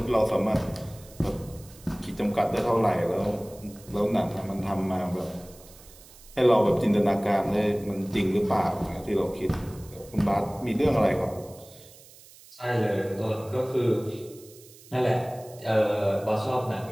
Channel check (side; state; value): right; noise; hiss, 22 dB below the sound